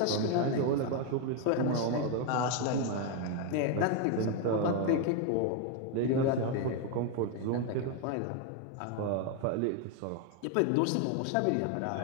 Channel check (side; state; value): both; different; correlation 0.01